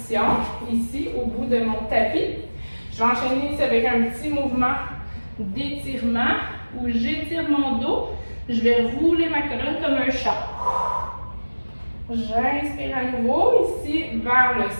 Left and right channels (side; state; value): both; inverted; correlation -1.00